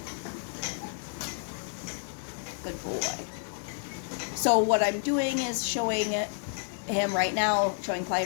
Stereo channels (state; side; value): silent; right; digital silence